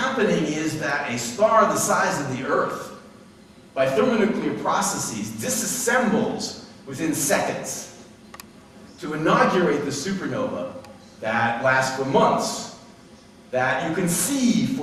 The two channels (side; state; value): both; identical; correlation 1.00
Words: is that a star the size of the Earth, by thermonuclear processes, disassembles within seconds to inaugurate the supernova that lasts for months, that you can see